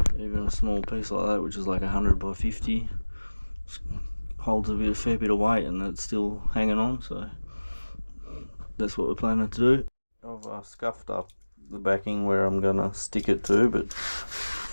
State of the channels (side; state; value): both; inverted; correlation -1.00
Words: even a small piece like that, which is like 100 by 50, holds a fair bit of weight and it's still hanging on, so that's what we're planning to do. I've scuffed up the backing where I'm gonna stick it to, but